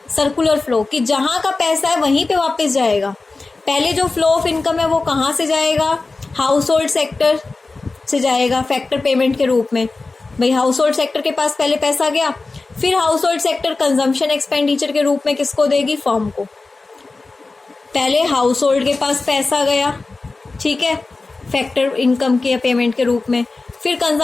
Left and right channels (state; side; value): quieter; right; 3.6 dB